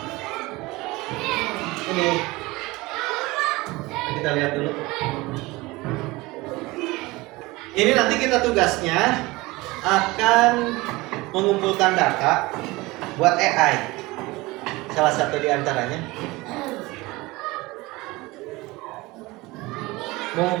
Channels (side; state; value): left; quieter; 21.6 dB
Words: Ini kita lihat dulu. Ini nanti kita tugasnya akan mengumpulkan data buat AI. Salah satu di antaranya